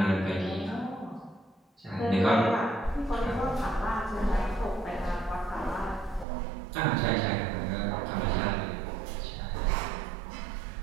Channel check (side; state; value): left; drops out; at 6.2 s